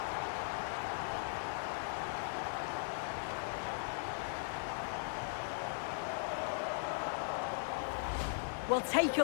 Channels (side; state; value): right; silent; digital silence